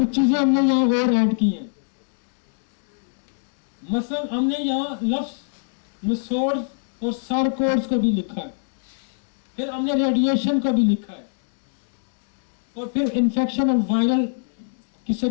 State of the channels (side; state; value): right; silent; digital silence